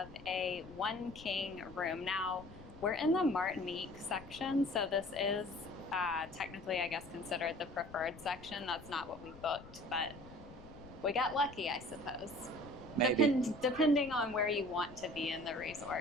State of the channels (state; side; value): noise; left; rumble, 18 dB below the sound